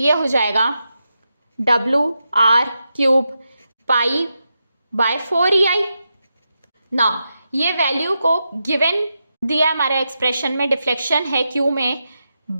हो जाएगा WR cube pi by 4 EI। ना ये वैल्यू को गिवन दिया हमारे एक्सप्रेशन में, डिफ्लेक्शन है Q में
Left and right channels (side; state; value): both; inverted; correlation -0.87